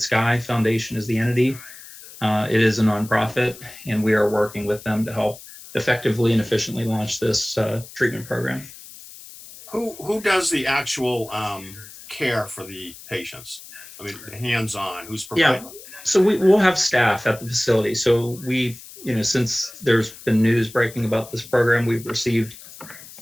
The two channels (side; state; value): left; noise; hiss, 17 dB below the sound